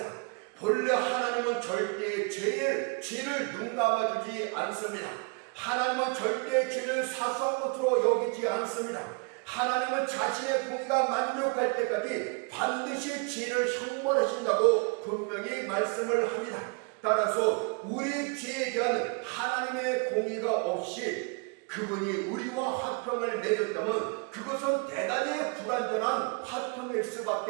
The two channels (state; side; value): quieter; left; 33.4 dB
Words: 본래 하나님은 절대 죄를 눈 감아주지 않습니다. 하나님은 절대 죄를 사소한 것으로 여기지 않습니다. 하나님은 자신의 공의가 만족할 때까지 반드시 죄를 형벌하신다고 분명히 말씀을 합니다. 따라서 우리 죄에 대한 하나님의 공의가 없이 그분이 우리와 화평을 맺었다면 그것은 대단히 불완전한 화평일